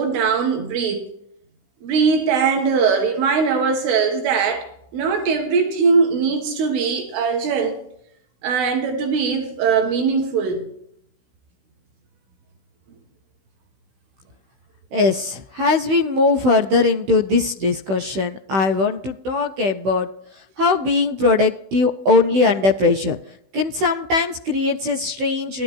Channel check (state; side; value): late; left; 15 ms